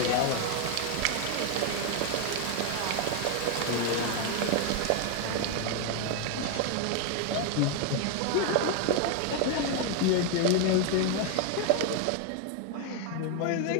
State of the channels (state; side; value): different; both; correlation 0.01